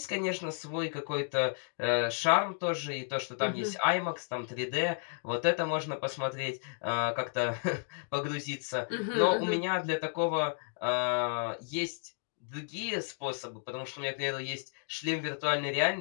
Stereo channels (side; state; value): right; silent; 56 dB below the other